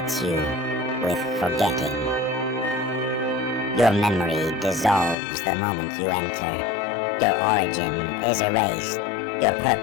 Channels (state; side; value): drops out; right; at 5.2 s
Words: you with forgetting. Your memory dissolves the moment you enter. Your origin is erased. Your